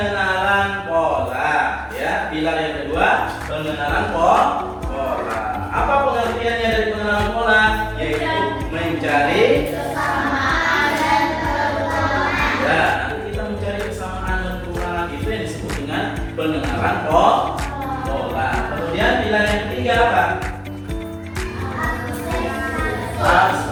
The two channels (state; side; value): identical; both; correlation 1.00